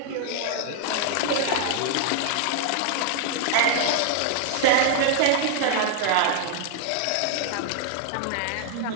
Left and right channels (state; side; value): different; both; correlation 0.00